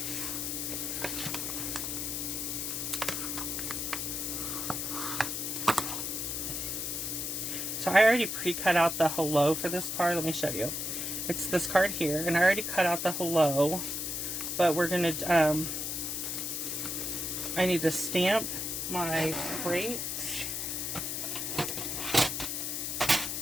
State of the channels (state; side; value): noise; left; hiss, 2 dB below the sound